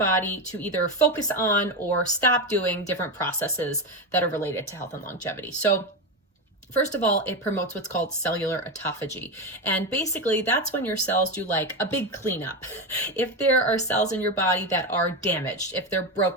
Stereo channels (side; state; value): both; normal; correlation 0.15